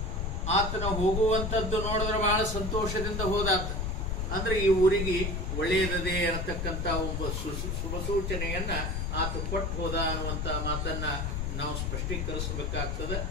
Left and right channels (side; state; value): left; noise; rumble, 1 dB below the sound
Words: ಆತನ ಹೋಗುವಂಥದ್ದು ನೋಡಿದ್ರೆ ಬಹಳ ಸಂತೋಷದಿಂದ ಹೋದಾತ. ಅಂದ್ರೆ ಈ ಊರಿಗೆ ಒಳ್ಳೆಯದದೇ ಅನ್ನತಕ್ಕಂಥ ಒಬ್ಬ ಶುಭ ಸೂಚನೆಯನ್ನ ಆತ ಕೊಟ್ಟು ಹೋದ ಅನ್ನುವಂಥ ಮಾತನ್ನ ನಾವು ಸ್ಪಷ್ಟೀಕರಿಸಬೇಕಾಗ್ತದೆ.